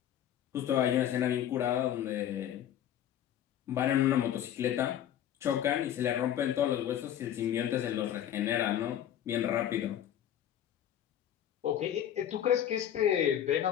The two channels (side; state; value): right; quieter; 10.7 dB